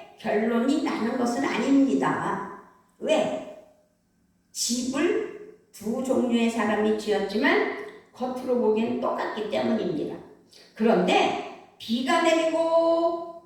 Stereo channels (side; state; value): both; identical; correlation 1.00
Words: 결론이 나는 것은 아닙니다. 왜? 집을 두 종류의 사람이 지었지만 겉으로 보기엔 똑같기 때문입니다. 그런데 비가 내리고